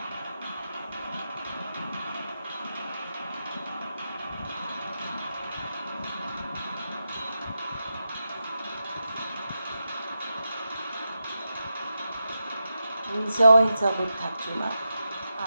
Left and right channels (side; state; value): both; inverted; correlation -0.88